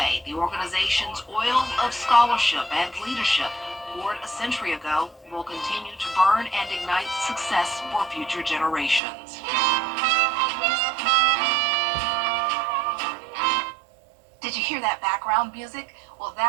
the organization's oil of scholarship and leadership poured a century ago will continue to burn and ignite success for future generations. Did you hear that background music? Well,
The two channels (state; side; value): drops out; left; at 9.0 s